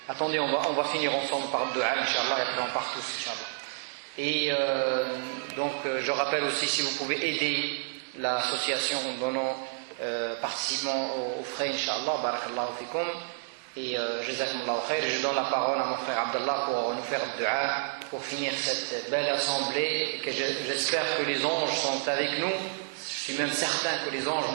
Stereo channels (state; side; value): silent; left; digital silence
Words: attendez, on va finir ensemble par le dua, Inch'Allah, et après on part tous, Inch'Allah. Et donc, je rappelle aussi, si vous pouvez aider l'association en donnant, participant aux frais, Inch'Allah, barakallahu fikum. Et jazakumullahu khair, je donne la parole à mon frère Abdallah pour nous faire le dua, pour finir cette belle assemblée, que j'espère que les anges sont avec nous. Je suis même certain que les anges